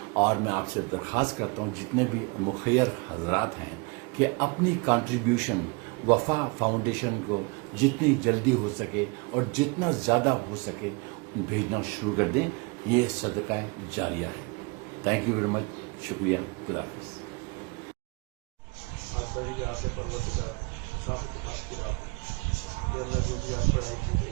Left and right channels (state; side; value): quieter; left; 29.0 dB